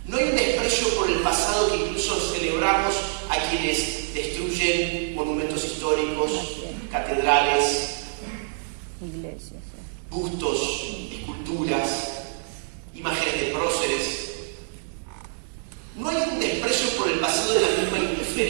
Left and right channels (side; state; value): left; silent; digital silence